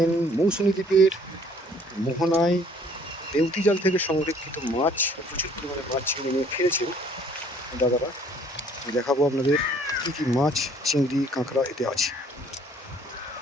মৌসুমী দ্বীপের মোহনায় বেউতি জাল থেকে সংরক্ষিত মাছ, প্রচুর পরিমাণে মাছ ছিঁড়ে নিয়ে ফিরেছেন দাদারা। দেখাবো আপনাদের কী কী মাছ, চিংড়ি, কাঁকড়া এতে আছে।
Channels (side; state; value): both; normal; correlation 0.58